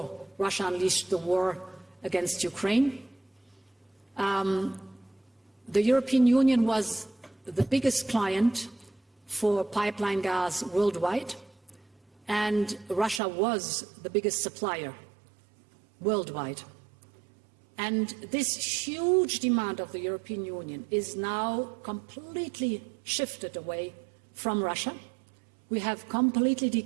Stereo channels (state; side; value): drops out; left; at 13.2 s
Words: Russia unleashed the war against Ukraine. The European Union was the biggest client for pipeline gas worldwide, and Russia was the biggest supplier worldwide. And this huge demand of the European Union is now completely shifted away from Russia. We have completely